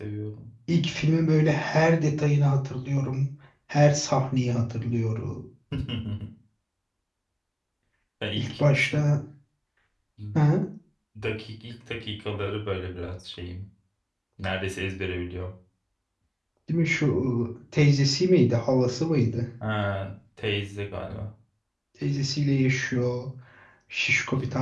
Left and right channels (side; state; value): both; identical; correlation 1.00